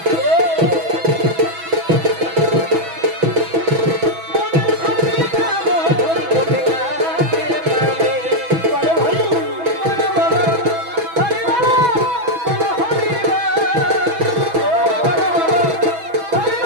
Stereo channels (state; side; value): late; left; 6.1 ms